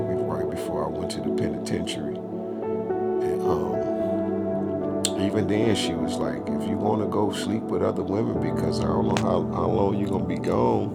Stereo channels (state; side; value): identical; both; correlation 1.00